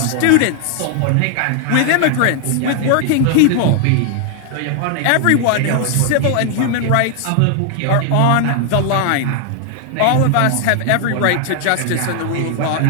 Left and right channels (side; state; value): both; different; correlation 0.00